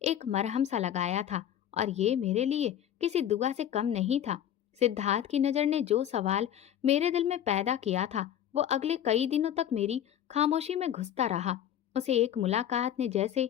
एक मरहम सा लगाया था, और ये मेरे लिए किसी दुआ से कम नहीं था। सिद्धार्थ की नजर ने जो सवाल मेरे दिल में पैदा किया था, वो अगले कई दिनों तक मेरी खामोशी में घुसता रहा। उसे एक मुलाकात ने जैसे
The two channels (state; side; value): quieter; right; 10.5 dB